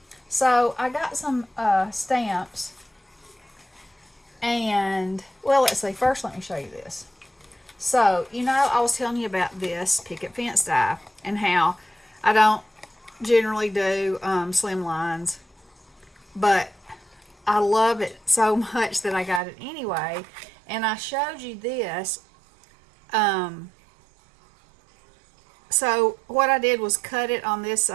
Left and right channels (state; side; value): drops out; left; at 19.4 s